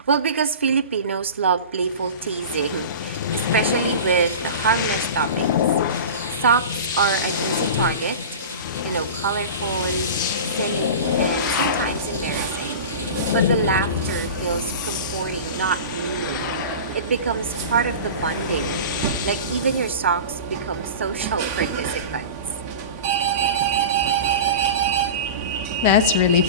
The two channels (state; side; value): inverted; both; correlation -0.32